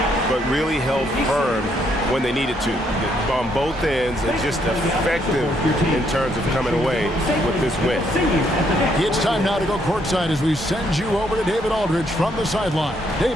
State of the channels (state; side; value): normal; both; correlation 0.72